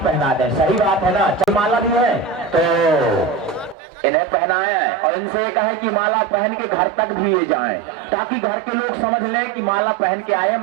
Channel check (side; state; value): left; drops out; at 3.8 s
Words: दें। सही बात है ना, चल माला भी है तो इन्हें पहनाए और इनसे कहे कि माला पहन के घर तक भी ये जाएं, ताकि घर के लोग समझ लें कि माला पहन के आए,